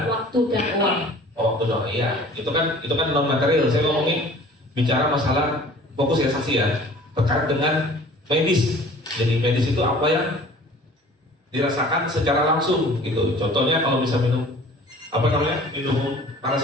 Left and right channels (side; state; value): both; normal; correlation 0.48